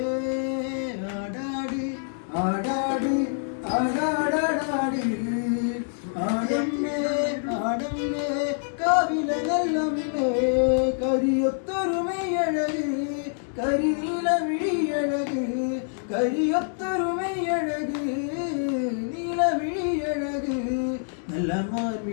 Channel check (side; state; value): right; silent; digital silence